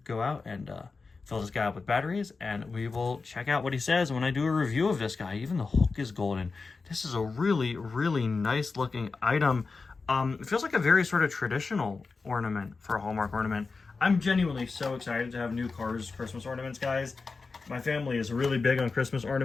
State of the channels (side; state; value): right; quieter; 4.3 dB